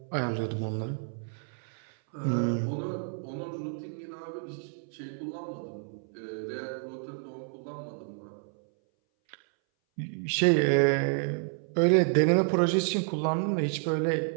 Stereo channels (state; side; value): silent; left; 58 dB below the other